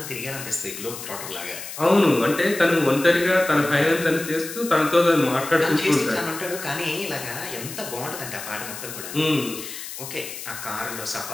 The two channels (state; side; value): noise; left; hiss, 10 dB below the sound